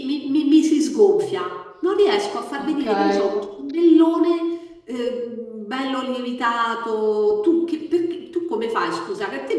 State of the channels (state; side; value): identical; both; correlation 1.00